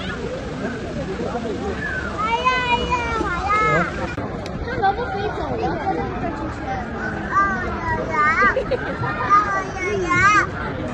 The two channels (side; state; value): both; identical; correlation 1.00